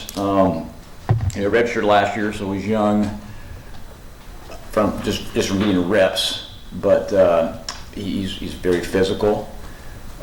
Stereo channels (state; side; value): identical; both; correlation 1.00